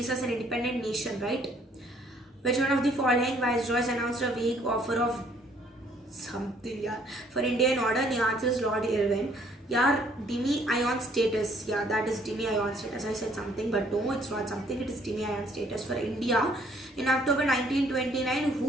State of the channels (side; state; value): both; normal; correlation 0.63